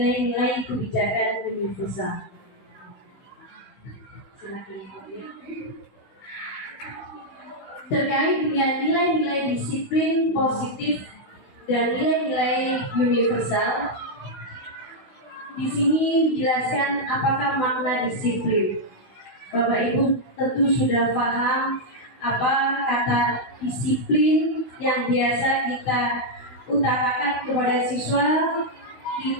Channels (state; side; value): late; right; 16 ms